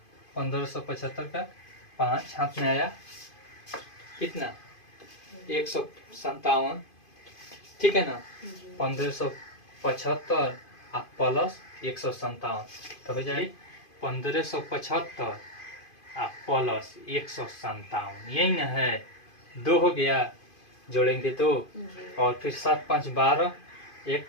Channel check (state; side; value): late; right; 2.5 ms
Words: 1575 का 5 हाथ में आया, कितना 157, ठीक है ना, 1575 और प्लस 157 तो हो जाए 1575 और प्लस 157, यही ना है, 2 हो गया, जोड़ेंगे तो, और फिर 7 5 12, 1